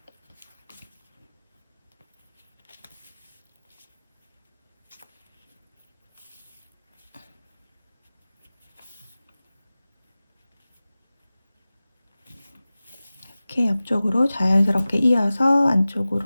이렇게 옆쪽으로 자연스럽게 이어서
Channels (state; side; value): inverted; both; correlation -0.97